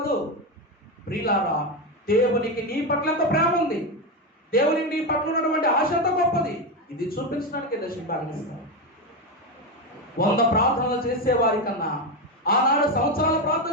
ప్రియులారా, దేవునికి నీ పట్ల ఎంత ప్రేమ ఉంది, దేవునికి నీ పట్ల ఉన్నటువంటి ఆశ ఎంత గొప్పది, ఇది చూపించడానికి దశమ భాగం ఇస్తాను. 100 ప్రార్థనలు చేసేవారి కన్నా, ఆనాడు సంవత్సరాల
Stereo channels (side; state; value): both; normal; correlation 0.12